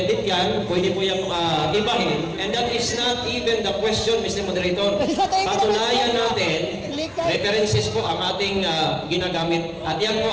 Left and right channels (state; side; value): identical; both; correlation 1.00